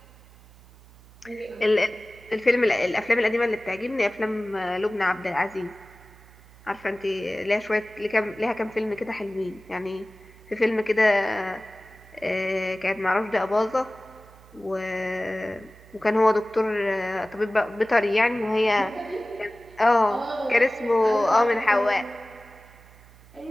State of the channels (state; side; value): noise; right; hum, 24 dB below the sound